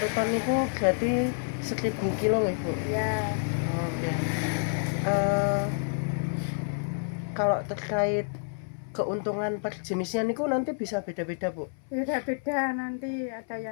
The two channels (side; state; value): right; silent; 59 dB below the other